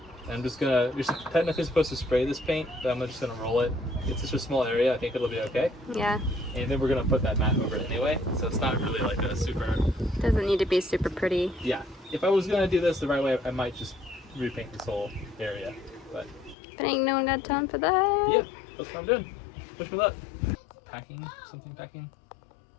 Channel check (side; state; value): right; drops out; at 16.6 s